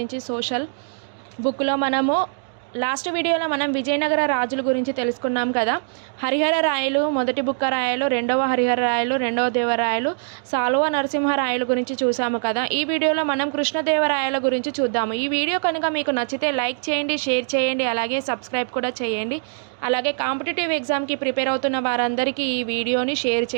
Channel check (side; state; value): left; silent; digital silence